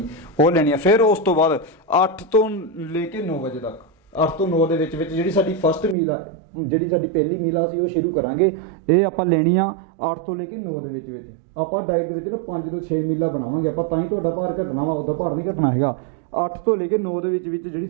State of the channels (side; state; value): left; drops out; at 6.0 s